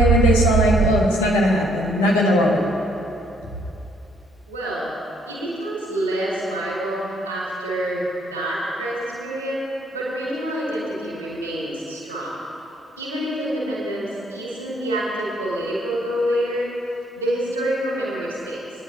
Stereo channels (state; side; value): normal; both; correlation 0.67